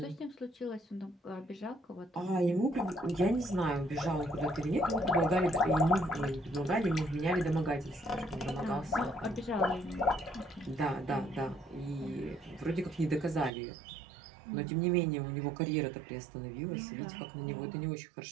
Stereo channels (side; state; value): left; drops out; at 13.5 s